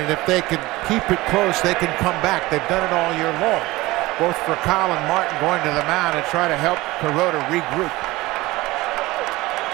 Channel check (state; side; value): quieter; left; 19.8 dB